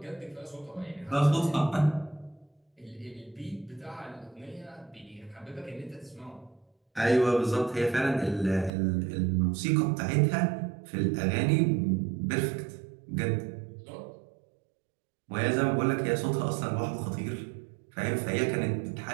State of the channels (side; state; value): left; drops out; at 8.7 s